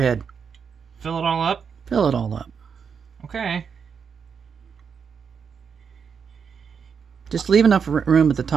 Fill it all up? Fill it all up. Okay. Just leave enough room at the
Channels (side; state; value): left; quieter; 6.5 dB